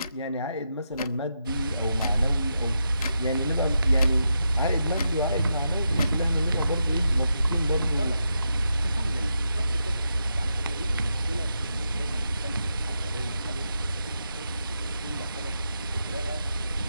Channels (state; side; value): inverted; both; correlation -0.85